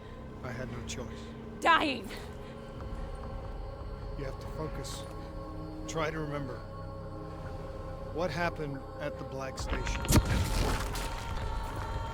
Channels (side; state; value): both; identical; correlation 1.00